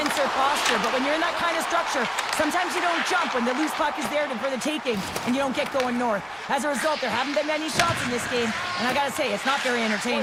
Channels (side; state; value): both; identical; correlation 1.00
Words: posture. But when you're in that kind of structure, sometimes you don't jump when the loose puck is there for the taking and you don't get going north. As a result, there haven't been many shots in this game. And I got to say, it's not very